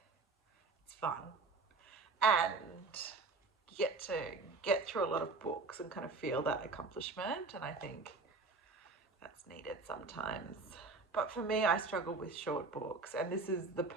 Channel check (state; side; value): quieter; left; 3.9 dB